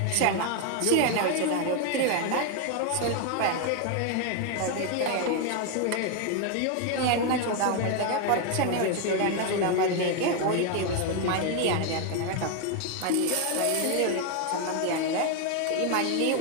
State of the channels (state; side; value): different; both; correlation 0.01